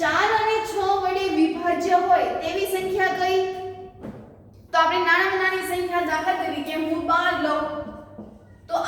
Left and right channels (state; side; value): identical; both; correlation 1.00